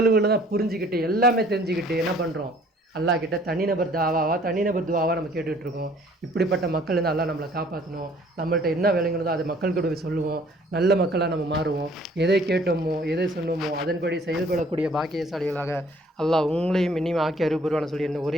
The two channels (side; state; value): both; normal; correlation 0.57